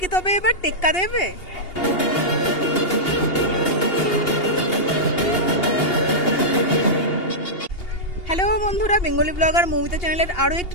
তবে এবার টেক্কা দেবে। হ্যালো বন্ধুরা, বেঙ্গলি ব্লগার মৌমিতা চ্যানেলের আরও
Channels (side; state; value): right; late; 2.8 ms